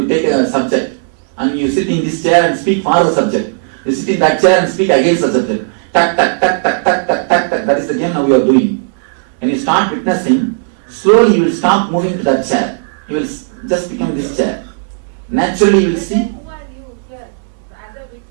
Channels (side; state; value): left; silent; digital silence